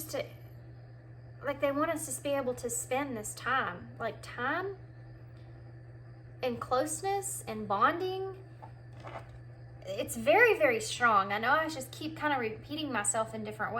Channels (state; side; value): identical; both; correlation 1.00